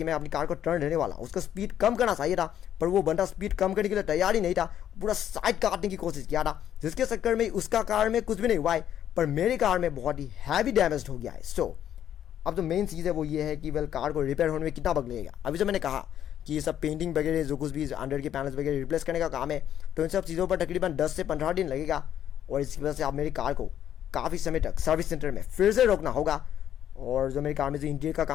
मैं अपनी कार को टर्न देने वाला, उसका स्पीड कम करना चाहिए था, पर वो बंदा स्पीड कम करने के लिए तैयार ही नहीं था, पूरा साइड काटने की कोशिश किया था, जिसके चक्कर में उसका कार में कुछ भी नहीं हुआ है, पर मेरी कार में बहुत ही हैवी डैमेज हो गया है। सो अब जो मेन चीज़ है वो ये है कि कार को रिपेयर होने में कितना वक्त लगेगा। अभी जो मैंने कहा कि ये सब पेंटिंग वगैरह जो कुछ भी अंडर के पैनल्स वगैरह रिप्लेस करने का काम है, तो इन सब चीज़ों पर तकरीबन 10 से 15 दिन लगेगा। और इसकी वजह से आप मेरी कार को काफ़ी समय तक सर्विस सेंटर में फिर से रोकना होगा। और जो मेरी कार में जो इंटीरियर का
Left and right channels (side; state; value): right; quieter; 10.4 dB